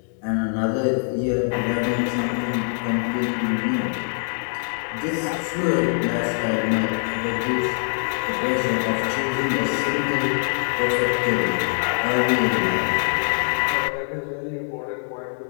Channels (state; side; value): silent; right; 63 dB below the other